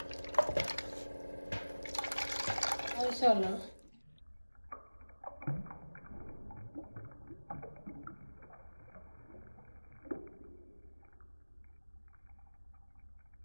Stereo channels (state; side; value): inverted; both; correlation -1.00